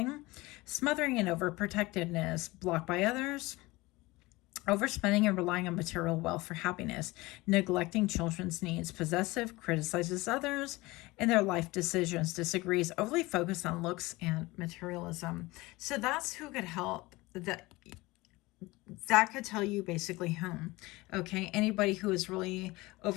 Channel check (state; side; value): quieter; right; 21.3 dB